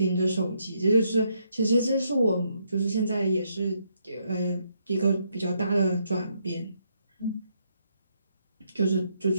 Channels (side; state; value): both; inverted; correlation -0.75